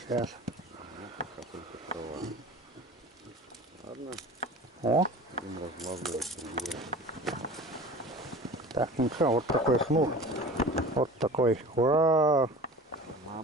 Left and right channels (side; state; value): both; normal; correlation 0.38